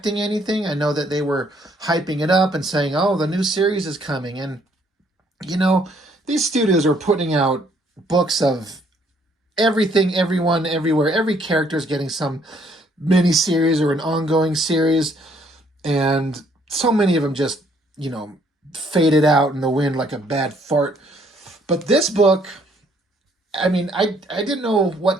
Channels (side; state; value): both; normal; correlation 0.65